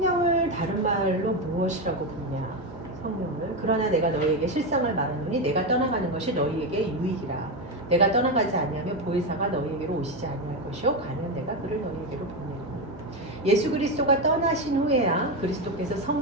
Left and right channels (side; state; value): both; normal; correlation 0.12